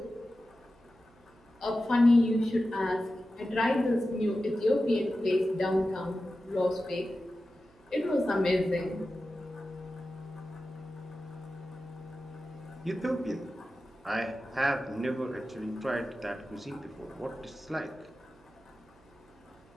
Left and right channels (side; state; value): right; noise; hum, 29 dB below the sound